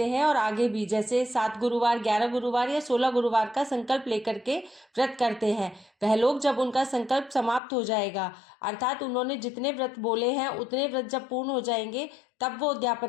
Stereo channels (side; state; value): right; drops out; at 7.6 s